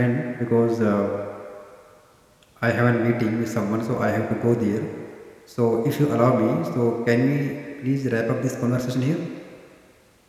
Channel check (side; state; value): both; identical; correlation 1.00